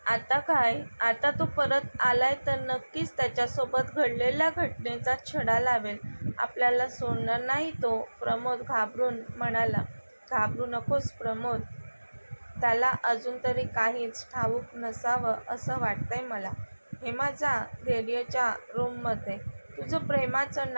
आता काय? आता तो परत आलाय तर नक्कीच त्याच्यासोबत घडलेल्या घटनेचा छडा लावेल. आपल्याला सोडणार नाही तो. प्रमोद घाबरून म्हणाला. घाबरू नकोस प्रमोद. त्याला अजून तरी काहीच ठाऊक नसावं असं वाटतंय मला. हेमा, जा धैर्यच्या रूममध्ये. तुझं प्रेमाचं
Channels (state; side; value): inverted; both; correlation -1.00